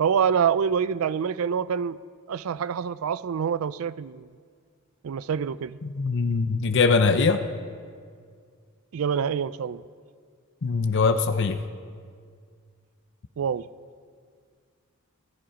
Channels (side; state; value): both; normal; correlation -0.01